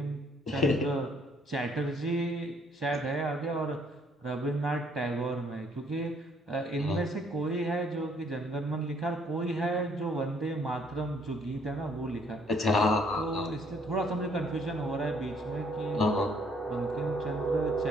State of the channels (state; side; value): normal; both; correlation 0.65